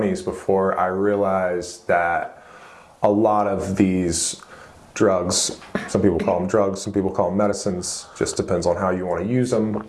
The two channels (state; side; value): identical; both; correlation 1.00